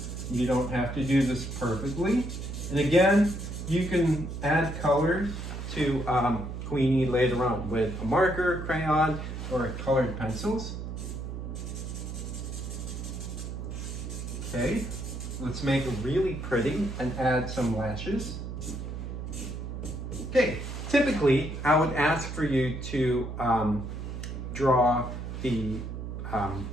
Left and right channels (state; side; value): noise; right; hum, 7 dB below the sound